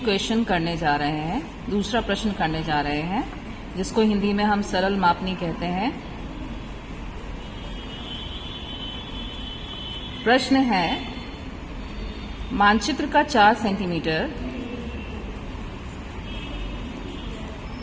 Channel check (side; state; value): both; identical; correlation 1.00